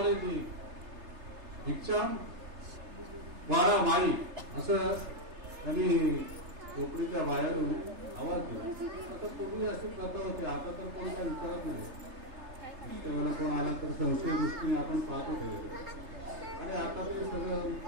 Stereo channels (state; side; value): late; left; 3.3 ms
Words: भिक्षा वाडा माई असं त्यांनी कोकणीच्या बाहेरून आवाज दिला. आता पूर्वी अशी प्रथा होती, आता तर कोण काय विचारत नाही. कोण आला तर संशय दृष्टीने आपण पाहतो आणि आता ते सगळं